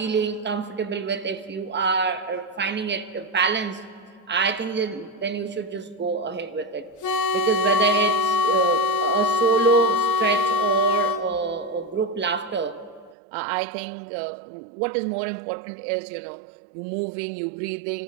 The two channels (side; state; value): left; drops out; at 13.2 s